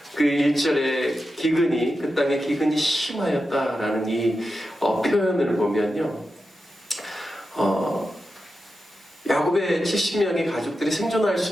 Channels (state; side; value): normal; both; correlation 0.90